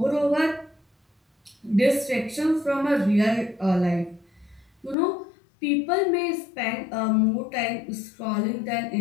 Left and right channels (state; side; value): drops out; right; at 5.0 s